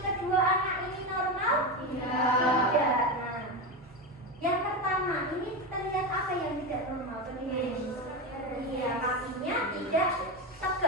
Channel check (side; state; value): both; normal; correlation 0.17